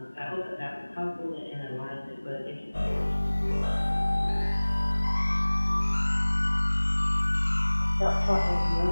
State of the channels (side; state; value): both; inverted; correlation -1.00